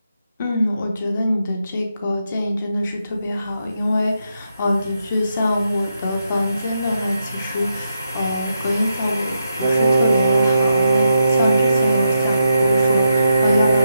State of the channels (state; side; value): inverted; both; correlation -0.84